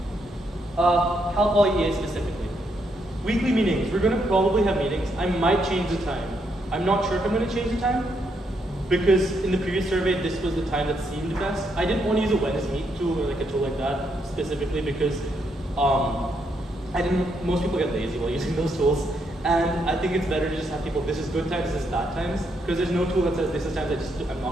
Cal Poly EA specifically. Weekly meetings. We're going to probably have meetings. I might change the time. I'm not sure if I'm going to change the time because in the previous survey, this was the time that seemed best. I didn't want to use a Wednesday Meet tool or like a tool like that specifically because most people get lazy while using those tools. And I think it's better to just have people, this is good times, this is bad times, because there's no tool that says this is times I'm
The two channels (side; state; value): both; normal; correlation 0.77